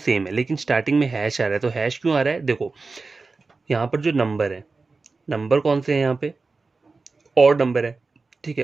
है, लेकिन स्टार्टिंग में हैश आ रहा है। तो हैश क्यों आ रहा है, देखो यहाँ पर जो नंबर है, नंबर कौन से हैं यहाँ पे, ऑड नंबर है। ठीक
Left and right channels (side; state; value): left; quieter; 4.0 dB